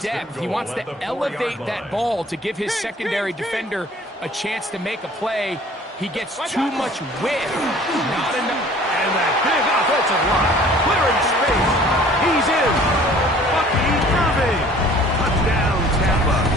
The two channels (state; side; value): normal; both; correlation 0.51